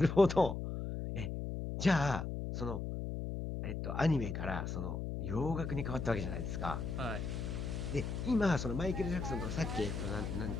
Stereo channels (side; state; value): left; noise; hum, 4 dB below the sound